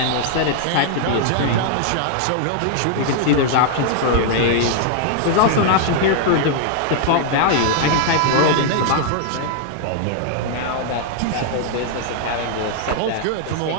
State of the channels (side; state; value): both; different; correlation -0.01